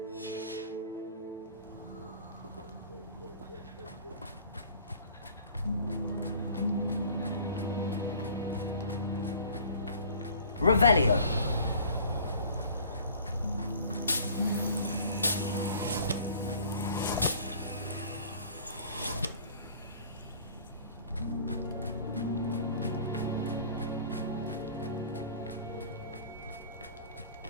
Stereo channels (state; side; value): inverted; both; correlation -0.49